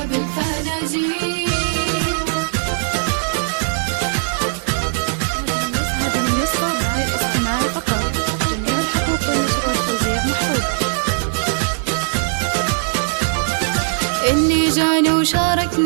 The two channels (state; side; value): silent; left; digital silence